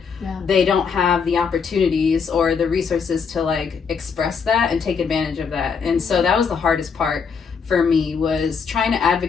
They don't have the opportunities or the resources to like express that and take advantage of that. And so that was the hardest part for me, was trying to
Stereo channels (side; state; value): right; quieter; 6.0 dB